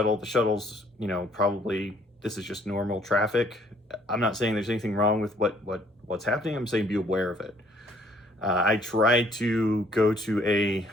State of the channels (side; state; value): both; normal; correlation 0.61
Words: The shuttle's, probably, this is just normal traffic. I'm not saying there's anything wrong with what's happening. I'm saying be aware of it. I tried to go to a